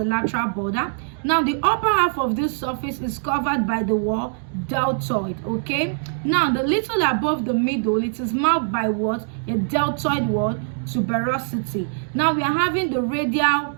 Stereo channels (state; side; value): silent; left; digital silence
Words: lateral border. Now the upper half of this surface is covered by the wall deltoid. Okay, now the little above the middle, it is marked by what? A deltoid wall tuberosity. Now we are having the radial